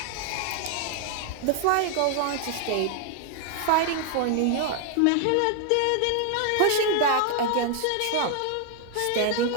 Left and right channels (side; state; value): both; different; correlation 0.00